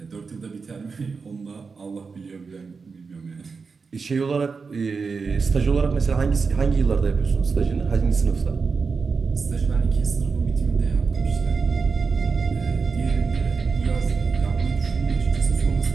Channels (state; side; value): quieter; left; 4.9 dB